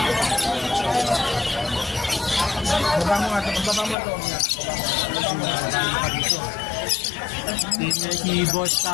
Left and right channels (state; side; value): drops out; right; at 4.0 s